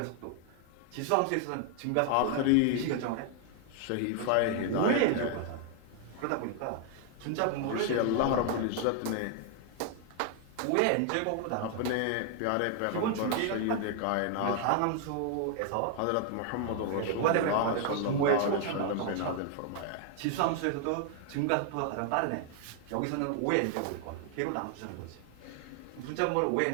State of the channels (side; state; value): both; different; correlation 0.00